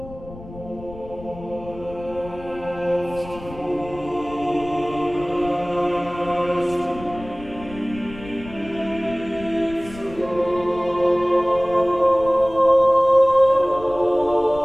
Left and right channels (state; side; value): noise; left; rumble, 16 dB below the sound